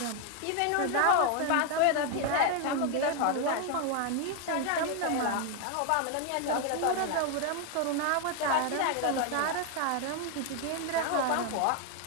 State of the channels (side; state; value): both; different; correlation 0.01